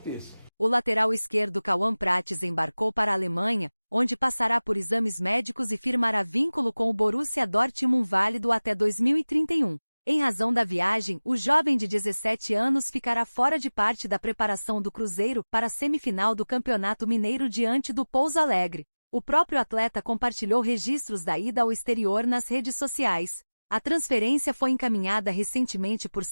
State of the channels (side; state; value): both; inverted; correlation -1.00